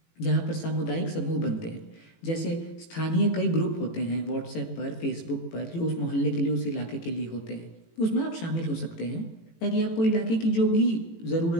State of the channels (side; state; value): right; late; 18 ms